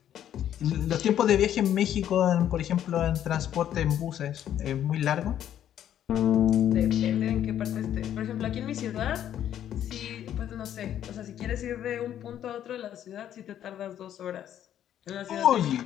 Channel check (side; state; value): right; quieter; 10.7 dB